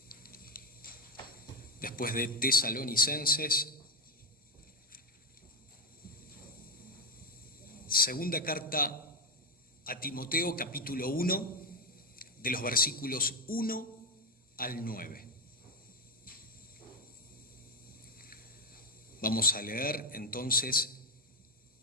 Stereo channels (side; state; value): both; normal; correlation 0.07